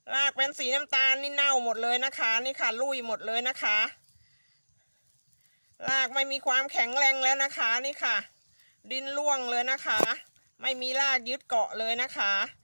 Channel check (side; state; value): both; inverted; correlation -1.00